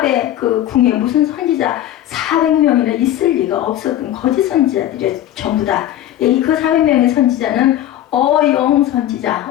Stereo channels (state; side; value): quieter; right; 12.6 dB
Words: 그 궁에 무슨 선지자 400명이나 있을 리가 없었던 거짓 선지자들이 전부 다. 그 400명의 선지자는 어용 선지자,